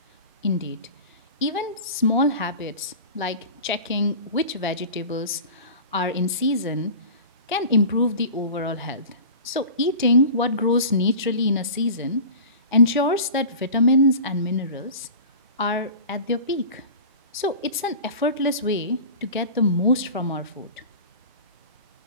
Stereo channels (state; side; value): inverted; both; correlation -0.36